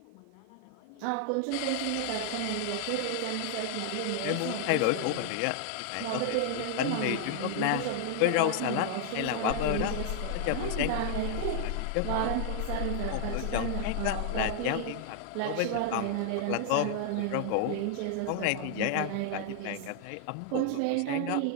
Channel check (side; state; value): both; different; correlation 0.00